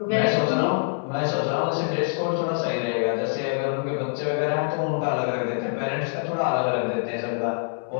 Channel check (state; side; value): silent; right; digital silence